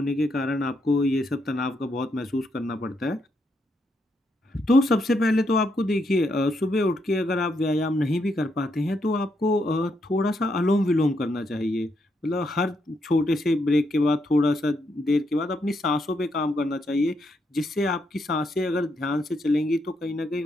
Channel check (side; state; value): both; normal; correlation 0.78